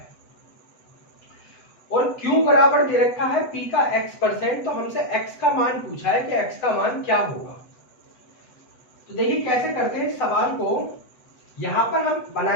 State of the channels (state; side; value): late; right; 8.0 ms